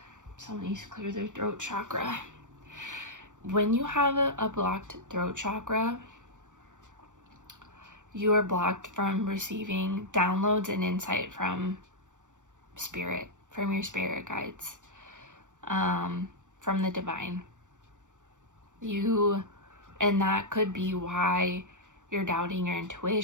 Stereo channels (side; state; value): left; late; 0.86 ms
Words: needs to clear their throat chakra. When you have a blocked throat chakra, you are blocked from receiving downloads and insight from spirit, from your spirit guides, from the divine. And that could be why you're doubting your